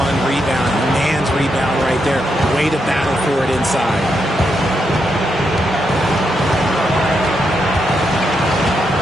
rebound, man's rebound right there. Way to battle for it inside.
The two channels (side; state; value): both; normal; correlation 0.82